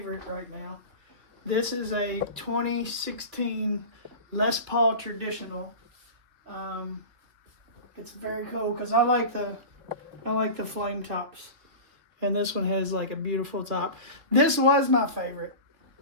right now, this is a 2016 Les Paul Traditional. It's very cool because I like the flame tops, and this one has like a beautiful top. This was my favorite.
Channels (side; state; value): left; late; 2.9 ms